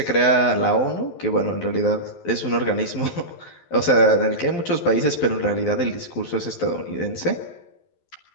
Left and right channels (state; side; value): late; right; 11 ms